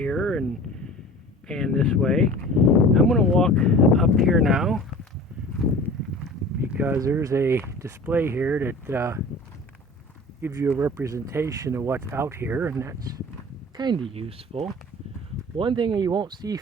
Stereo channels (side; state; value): both; normal; correlation 0.41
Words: and pan this way. I'm going to walk up here now because there's a display here that gives you a representation of what's out here, and that's kind of useful. One thing you won't see